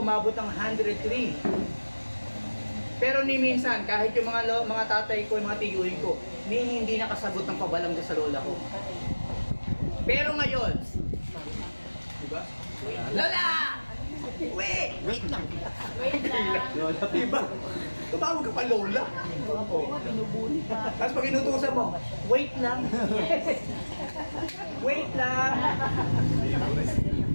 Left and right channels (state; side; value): inverted; both; correlation -1.00